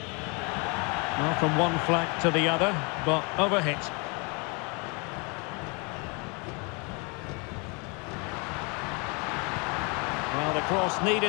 Well, from one flank to the other, but overhit. Well, the cross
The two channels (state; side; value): quieter; right; 31.5 dB